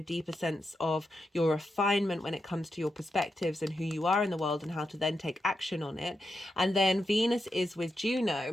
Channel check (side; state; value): both; normal; correlation 0.86